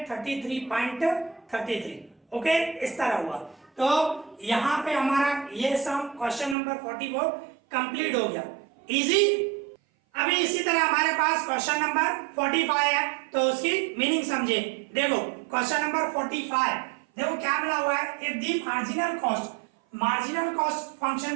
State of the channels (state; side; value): drops out; left; at 6.6 s